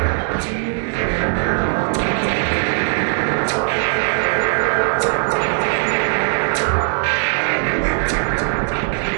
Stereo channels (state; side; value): silent; left; 67 dB below the other